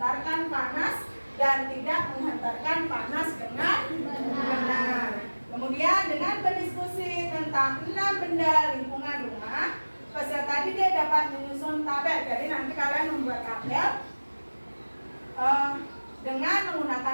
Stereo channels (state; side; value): inverted; both; correlation -1.00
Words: panas dan tidak menghantarkan panas dengan benar. Kemudian dengan berdiskusi tentang 6 benda lingkungan rumah, peserta didik dapat menyusun tabel. Jadi nanti kalian membuat tabel dengan